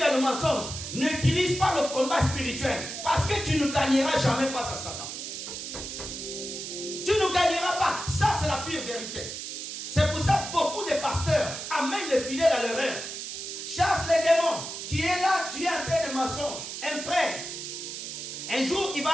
le mensonge, n'utilise pas le combat spirituel. Parce que tu ne gagneras jamais face à Satan. Tu ne gagneras pas. Ça c'est la pire vérité. C'est pour ça que beaucoup de pasteurs amènent les fidèles à l'erreur. Chasse les démons. Tu es là, tu es en train de mensonge. Un frère, un jour il va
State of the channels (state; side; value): noise; right; hiss, 7 dB below the sound